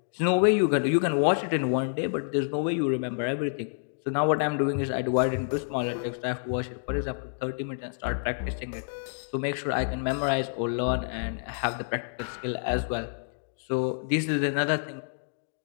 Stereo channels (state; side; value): silent; right; digital silence